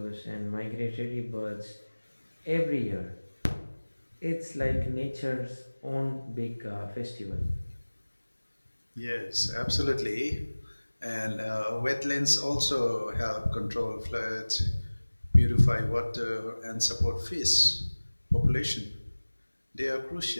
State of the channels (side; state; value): both; inverted; correlation -1.00